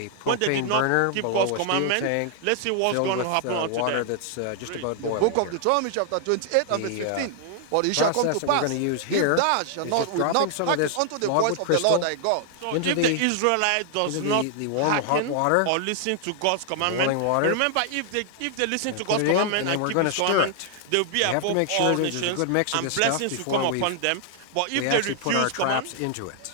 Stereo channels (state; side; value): different; both; correlation 0.00